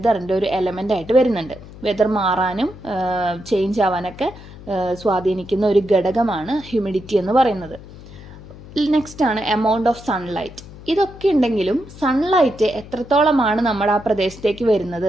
ഒരു എലമെൻ്റ് ആയിട്ട് വരുന്നുണ്ട്. വെതർ മാറാനും ചേഞ്ച് ആവാനൊക്കെ സ്വാധീനിക്കുന്ന ഒരു ഘടകമാണ് ഹ്യൂമിഡിറ്റി എന്ന് പറയുന്നത്. നെക്സ്റ്റ് ആണ് എമൗണ്ട് ഓഫ് സൺലൈറ്റ്. ഇതൊക്കെ ഉണ്ടെങ്കിലും സൺലൈറ്റ് എത്രത്തോളമാണ് നമ്മുടെ ആ പ്രദേശത്തേക്ക് വരുന്നത്,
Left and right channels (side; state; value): left; noise; hum, 17 dB below the sound